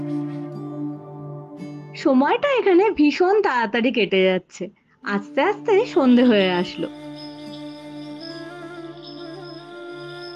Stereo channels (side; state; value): both; identical; correlation 1.00